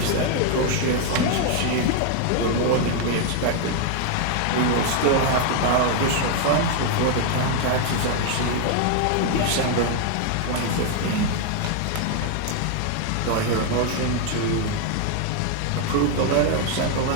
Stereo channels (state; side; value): different; both; correlation 0.00